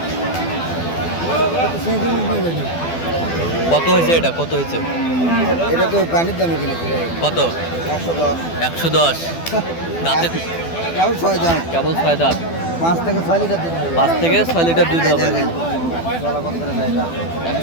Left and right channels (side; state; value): right; late; 12 ms